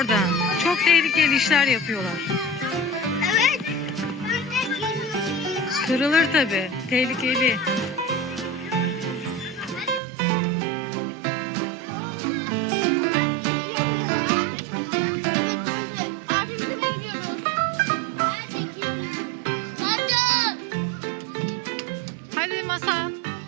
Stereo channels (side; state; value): left; drops out; at 10.0 s